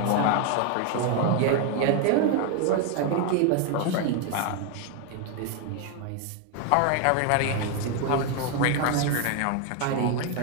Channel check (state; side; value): different; both; correlation 0.01